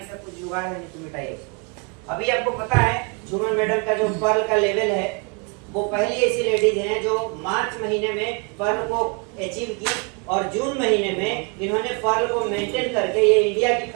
का कुछ जुगाड़ है, नहीं तो मिटाइए उसको। अभी आपको पता है झूमर मैडम का जो पर्ल का लेवल है, वो पहली ऐसी लेडीज हैं जो मार्च महीने में पर्ल को अचीव की, और जून महीने में इन्होंने पर्ल को मेंटेन करके ये इंडिया की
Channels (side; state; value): left; quieter; 33.4 dB